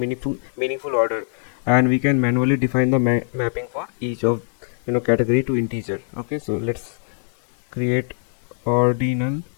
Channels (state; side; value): silent; right; 64 dB below the other